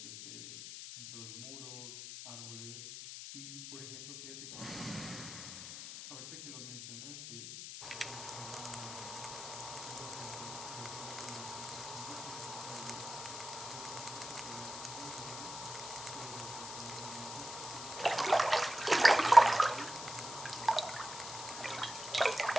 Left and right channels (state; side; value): noise; left; hiss, 9 dB below the sound